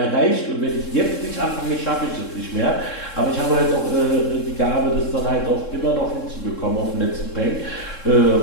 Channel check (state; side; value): late; right; 3.7 ms